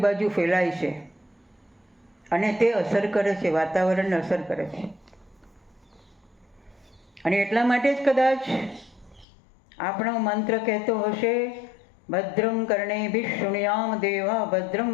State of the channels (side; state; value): right; drops out; at 9.2 s